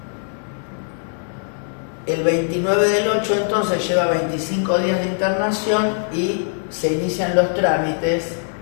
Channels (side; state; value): right; silent; 62 dB below the other